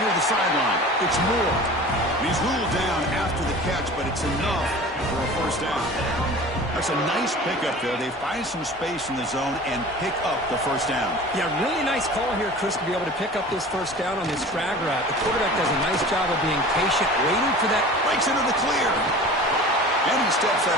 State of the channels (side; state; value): both; normal; correlation 0.40